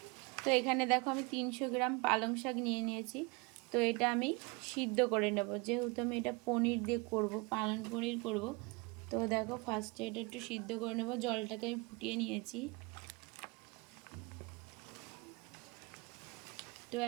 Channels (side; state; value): left; quieter; 28.1 dB